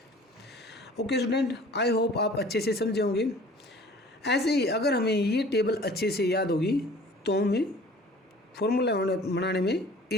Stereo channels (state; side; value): normal; both; correlation 0.48